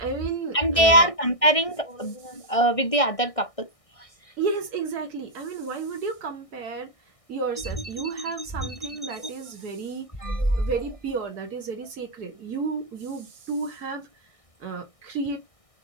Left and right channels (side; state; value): right; late; 1.6 ms